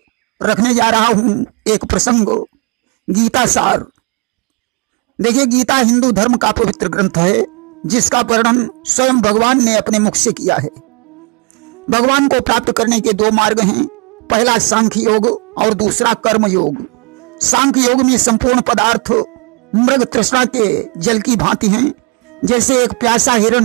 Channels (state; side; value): quieter; left; 32.0 dB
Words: रखने जा रहा हूं एक प्रसंग, गीता सार। देखिए, गीता हिंदू धर्म का पवित्र ग्रंथ है जिसका वर्णन स्वयं भगवान ने अपने मुख से किया है। भगवान को प्राप्त करने के दो मार्ग हैं, पहला सांख्य योग और दूसरा कर्म योग। सांख्य योग में संपूर्ण पदार्थ मृग तृष्णा के जल की भांति हैं। जैसे एक प्यासा